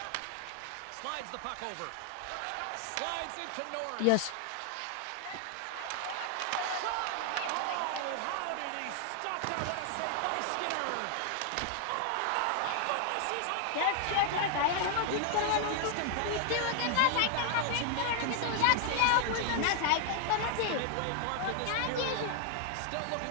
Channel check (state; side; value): different; both; correlation 0.00